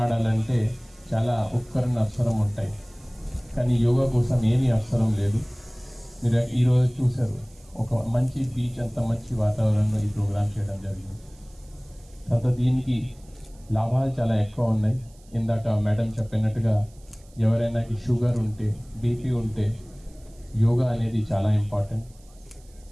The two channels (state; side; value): noise; right; hiss, 29 dB below the sound